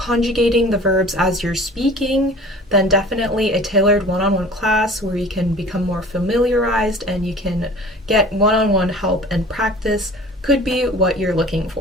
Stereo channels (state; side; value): normal; both; correlation 0.44